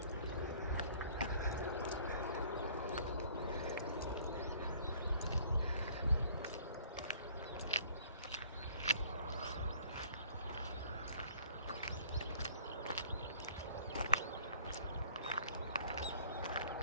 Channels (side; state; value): both; inverted; correlation -0.54